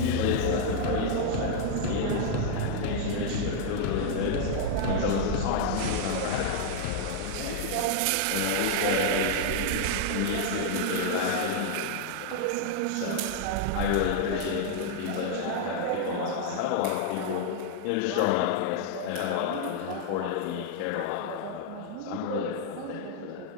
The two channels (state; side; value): different; both; correlation -0.01